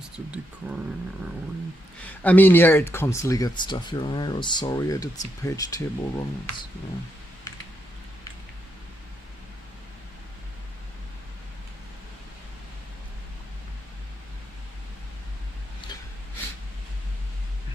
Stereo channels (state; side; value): normal; both; correlation 0.81